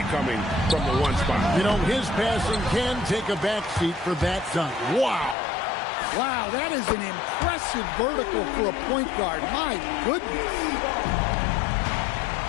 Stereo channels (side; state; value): right; drops out; at 5.4 s